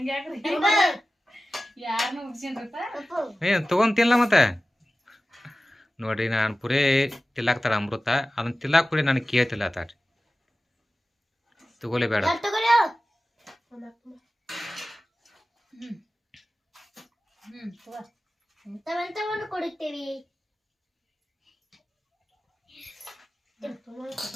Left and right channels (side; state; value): both; normal; correlation 0.96